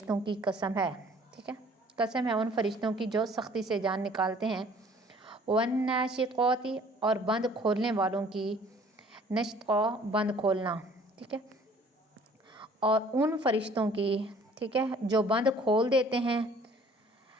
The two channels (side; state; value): both; normal; correlation 0.55